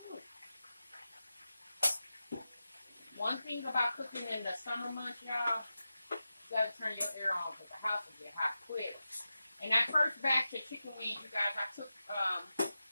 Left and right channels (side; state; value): both; inverted; correlation -0.92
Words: One thing about cooking in the summer months, y'all, you gotta turn your air on because the house will get hot quick. And that first batch of chicken wings, you guys, I took